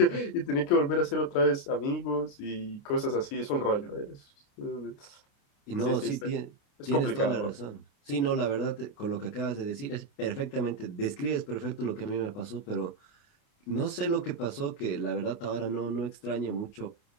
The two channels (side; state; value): right; late; 29 ms